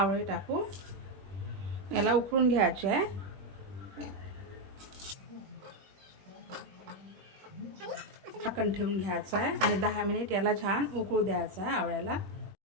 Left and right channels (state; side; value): late; left; 21 ms